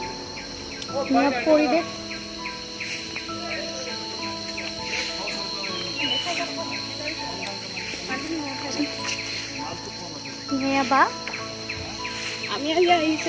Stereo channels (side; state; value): both; identical; correlation 1.00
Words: পৰিৱেশ বা আমি আজি